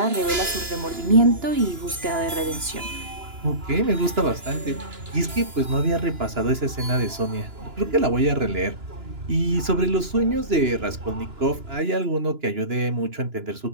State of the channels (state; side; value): late; left; 2.9 ms